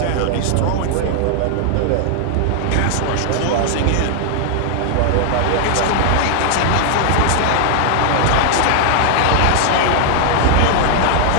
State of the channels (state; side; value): different; both; correlation 0.00